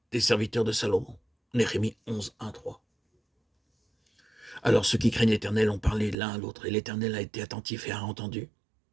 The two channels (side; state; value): left; drops out; at 6.2 s